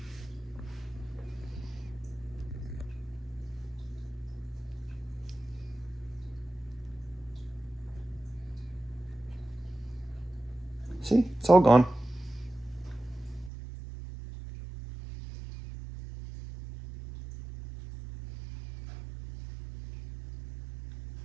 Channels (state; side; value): drops out; left; at 13.5 s